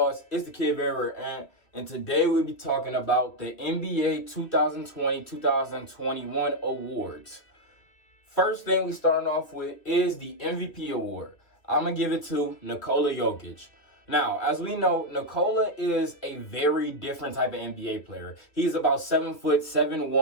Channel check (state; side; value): late; right; 2.6 ms